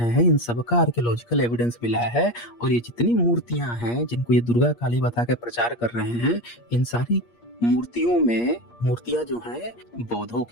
हैं, इन सब का आर्कियोलॉजिकल एविडेंस मिला है। और ये जितनी मूर्तियां हैं जिनको ये दुर्गा काली बता के प्रचार कर रहे हैं, इन सारी मूर्तियों में मूर्तियां जो हैं बौद्धों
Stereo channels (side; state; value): right; late; 8.5 ms